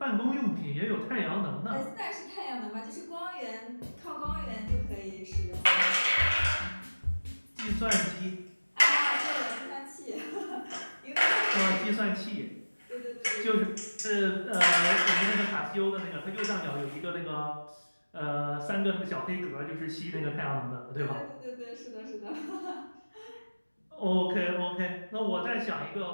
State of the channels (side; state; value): both; inverted; correlation -1.00